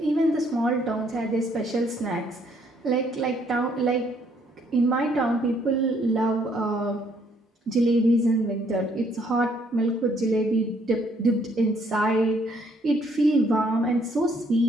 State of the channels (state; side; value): normal; both; correlation 0.67